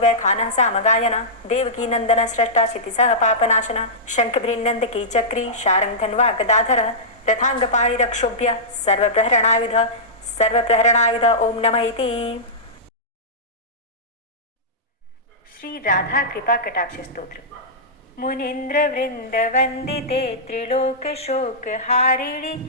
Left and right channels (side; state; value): both; normal; correlation -0.15